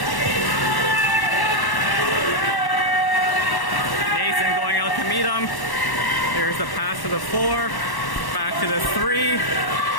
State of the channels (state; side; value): late; right; 1.1 ms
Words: Nathan going out to meet him. There's the pass to the 4. Back to the 3.